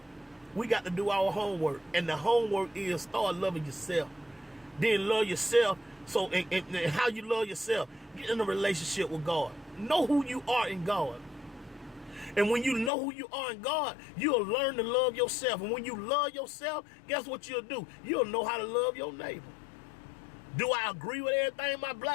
we got to do our homework. And the homework is start loving yourself. Then love yourself. So and how you love yourself, get in a relationship with God. Know who you are in God. And when you know who you are in God, you'll learn to love yourself. And when you love yourself, guess what you'll do? You'll know how to love your neighbor. Do I agree with everything my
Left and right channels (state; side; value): drops out; right; at 12.9 s